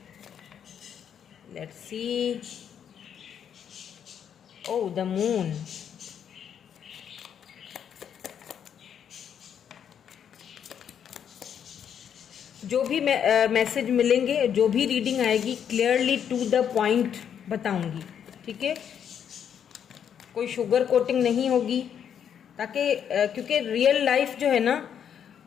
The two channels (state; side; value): quieter; right; 8.5 dB